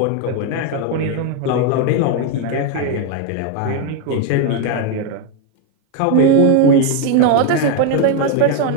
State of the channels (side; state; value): both; different; correlation 0.01